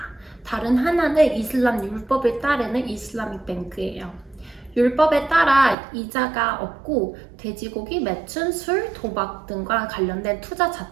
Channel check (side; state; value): left; drops out; at 5.8 s